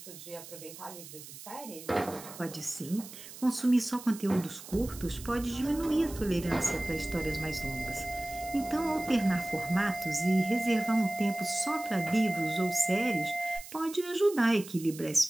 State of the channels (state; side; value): noise; right; hiss, 15 dB below the sound